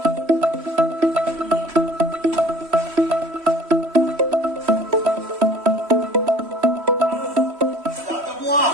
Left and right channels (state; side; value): late; left; 3.1 ms